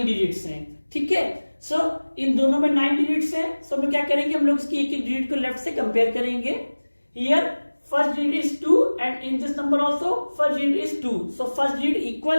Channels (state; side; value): inverted; both; correlation -1.00